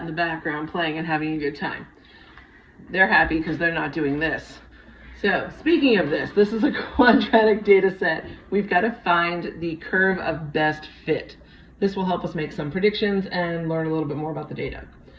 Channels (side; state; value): both; identical; correlation 1.00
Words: the background playing and having a good time. They're happy because they're not doing this. So, speaking of this is a quadratic data set. We've got to find the curve of best fit. This will help us make some predictions and learn a little bit more about the data.